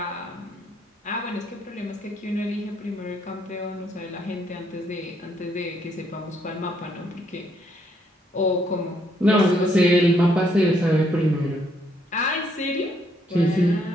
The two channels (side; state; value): both; normal; correlation 0.71